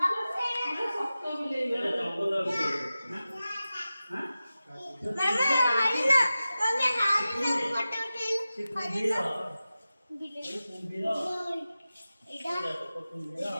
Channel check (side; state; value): both; inverted; correlation -0.94